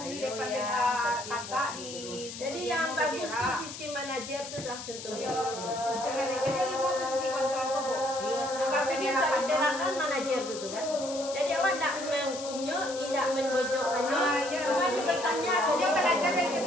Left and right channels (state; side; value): noise; left; hiss, 10 dB below the sound